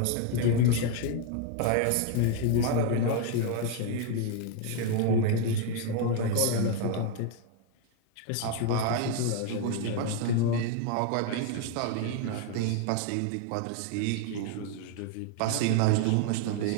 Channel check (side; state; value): both; different; correlation 0.01